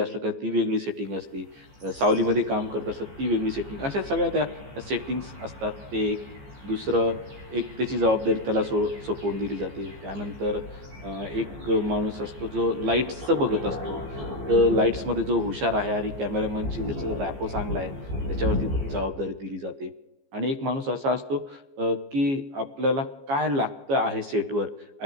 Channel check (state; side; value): late; left; 15 ms